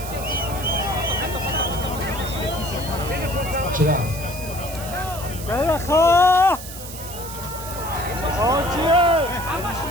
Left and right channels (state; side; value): noise; right; hiss, 12 dB below the sound